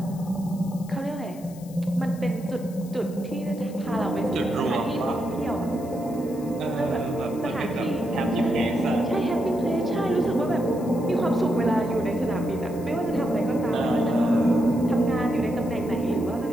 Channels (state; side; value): noise; left; hiss, 22 dB below the sound